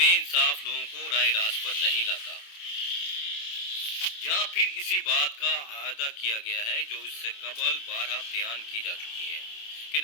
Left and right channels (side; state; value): right; late; 28 ms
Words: انصاف لوگوں کو راہ راست پر نہیں لاتا۔ یہاں پھر اسی بات کا اعادہ کیا گیا ہے جو اس سے قبل بارہا بیان کی جا چکی ہے کہ